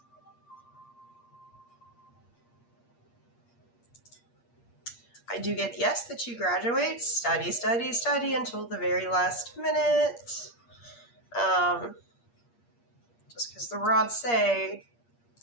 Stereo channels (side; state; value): right; late; 8.5 ms